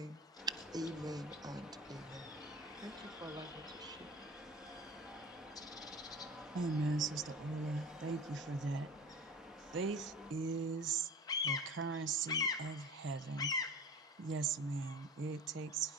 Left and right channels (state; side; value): normal; both; correlation 0.37